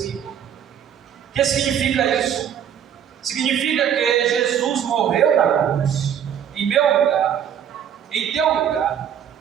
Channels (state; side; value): quieter; left; 9.0 dB